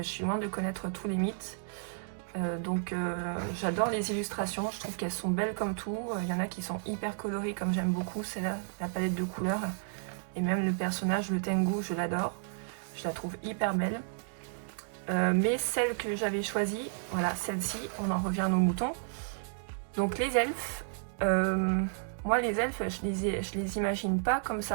suis loin de connaître tous les mythes. Donc j'adore les illustrations, je trouve qu'elles sont belles comme tout. Il y en a qui sont hyper colorées comme j'aime beaucoup, c'est là la palette de couleurs. Et même le personnage, le Tengu, je l'adore. Je la trouve hyper belle. Mais celle que j'avais choisie, voilà, celle-ci, on en revient à nos moutons. Donc les elfes, moi les elfes, je les imagine pas comme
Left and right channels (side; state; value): left; silent; digital silence